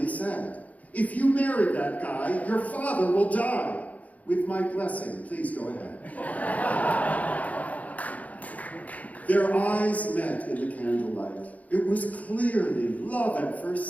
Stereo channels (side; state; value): right; late; 0.072 ms